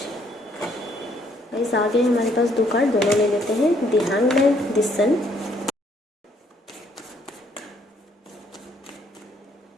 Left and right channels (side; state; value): both; normal; correlation 0.67